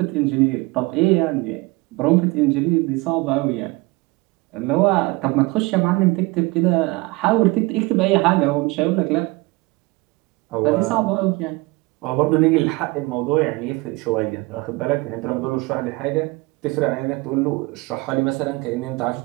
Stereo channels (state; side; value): quieter; left; 23.2 dB